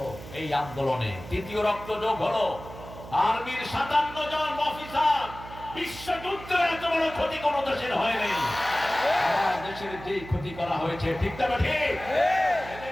এই আন্দোলনে, তৃতীয় রক্ত যোগ হলো আর্মির 57 জন অফিসার। বিশ্বযুদ্ধে এত বড় ক্ষতি কোন দেশের হয়নি, দেশের যেই ক্ষতি করা হয়েছে, ঠিক না ঠিক?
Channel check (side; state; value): right; noise; hum, 14 dB below the sound